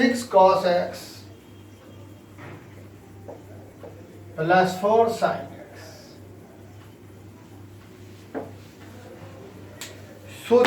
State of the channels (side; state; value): both; identical; correlation 1.00